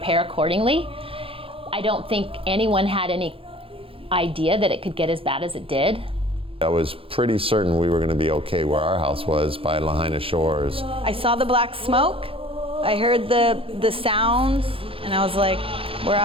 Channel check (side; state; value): left; late; 0.27 ms